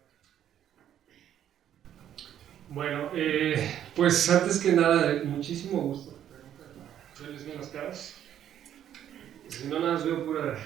Bueno, pues antes que nada, muchísimo gusto. ¿Verles bien las caras? Si no, nada más veo pura,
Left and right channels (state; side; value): quieter; left; 10.5 dB